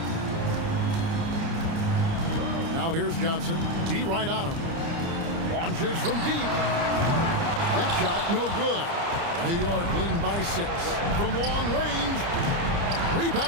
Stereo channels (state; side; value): late; left; 30 ms